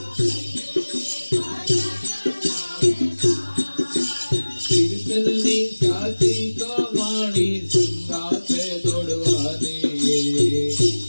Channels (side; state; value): both; inverted; correlation -1.00